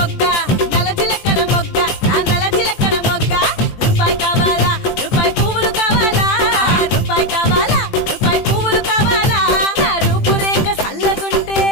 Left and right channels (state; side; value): late; right; 20 ms